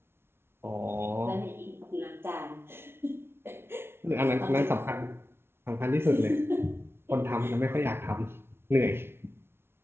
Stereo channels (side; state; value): left; late; 0.12 ms